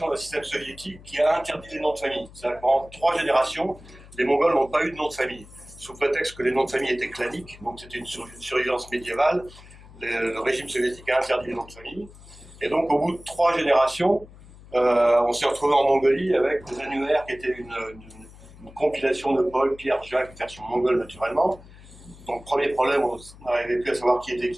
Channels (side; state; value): left; noise; hum, 20 dB below the sound